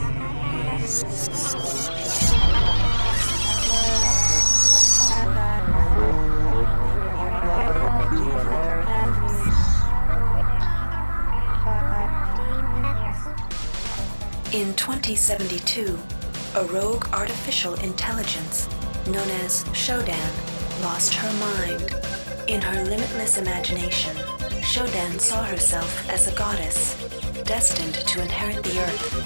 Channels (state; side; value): inverted; both; correlation -1.00